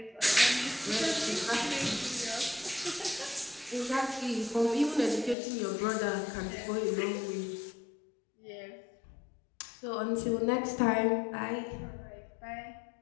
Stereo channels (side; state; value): right; drops out; at 5.4 s